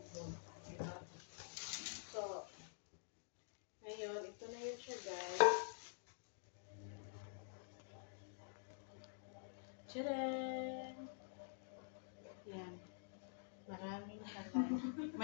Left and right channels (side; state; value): right; silent; digital silence